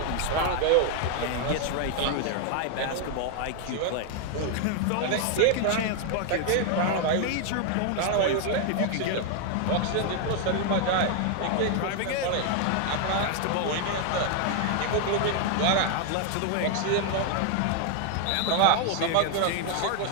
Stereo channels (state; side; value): different; both; correlation 0.00